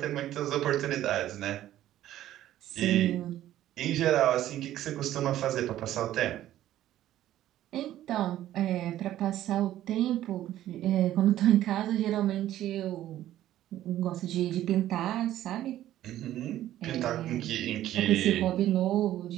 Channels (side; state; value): left; quieter; 13.1 dB